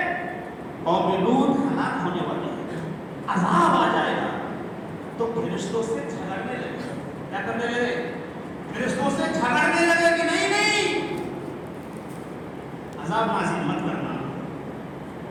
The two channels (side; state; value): both; identical; correlation 1.00